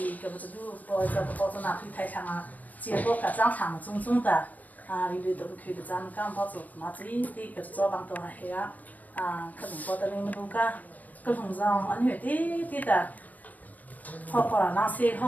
个不是都包这个包装拿去台上啊，结果个长长种种的，里头去个咱们刚包做嘛最的个早帮都还黑啊。可能包的你们都个，个红上安全的，好好了，那些好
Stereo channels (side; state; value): right; late; 0.079 ms